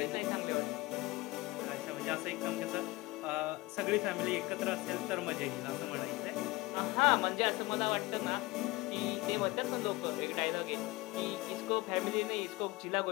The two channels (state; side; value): quieter; right; 21.2 dB